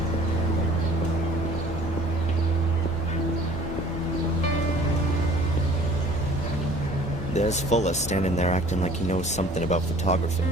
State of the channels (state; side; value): normal; both; correlation 0.51